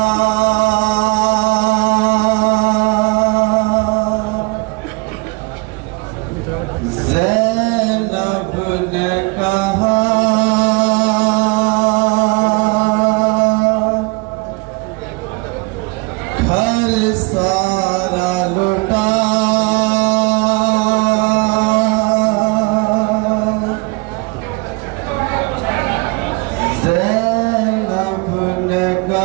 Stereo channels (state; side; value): quieter; left; 27.8 dB